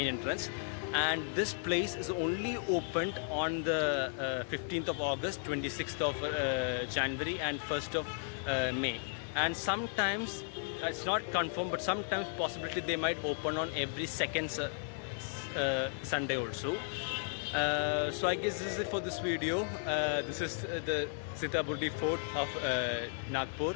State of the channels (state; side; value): silent; right; digital silence